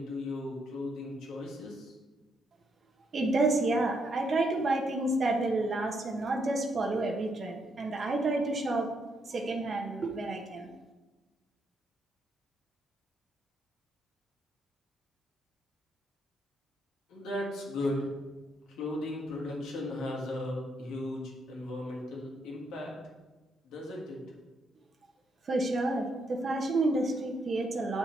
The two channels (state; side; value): normal; both; correlation 0.76